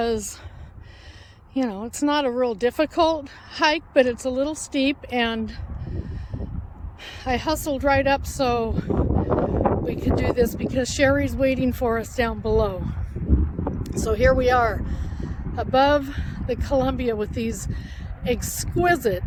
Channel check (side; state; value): both; identical; correlation 1.00